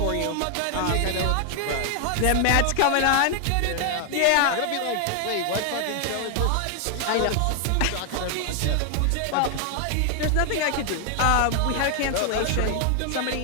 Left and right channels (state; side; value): different; both; correlation 0.00